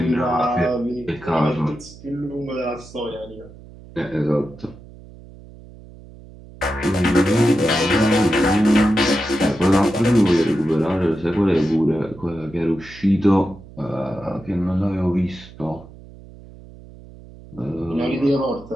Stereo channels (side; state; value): right; noise; hum, 19 dB below the sound